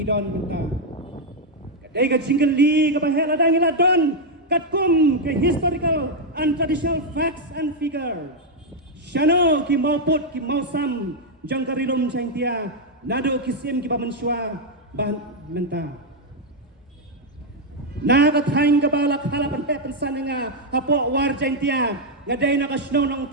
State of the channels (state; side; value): normal; both; correlation 0.00